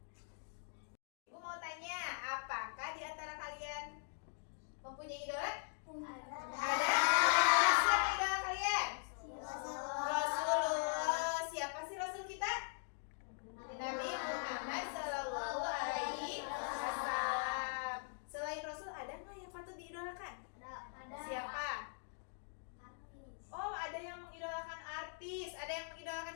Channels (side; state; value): right; silent; digital silence